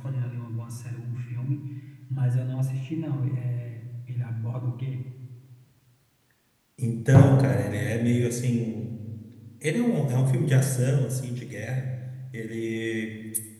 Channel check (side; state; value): both; identical; correlation 1.00